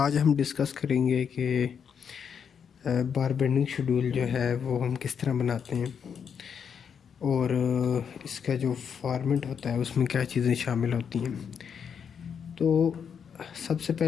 हम डिस्कस करेंगे कि बार बेंडिंग शेड्यूल जो है वो हम किस तरह बनाते हैं और इसका जो फॉर्मेट होता है उसमें क्या चीज़ें शामिल होती हैं। तो सबसे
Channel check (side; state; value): right; quieter; 7.2 dB